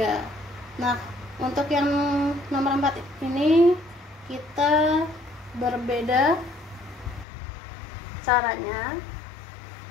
Nah, untuk yang nomor 4 ini kita berbeda caranya.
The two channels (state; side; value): drops out; right; at 7.2 s